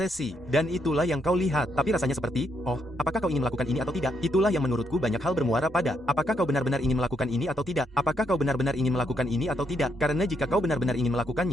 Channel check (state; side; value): normal; both; correlation 0.76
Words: dan itulah yang kau lihat. Tapi rasanya seperti, oh, apakah kau ingin melakukan ini atau tidak? Itulah yang menurutku banyak hal bermuara pada, apakah kau benar-benar ingin melakukan ini atau tidak? Apakah kau benar-benar ingin melakukan ini atau tidak? Karena jika kau benar-benar ingin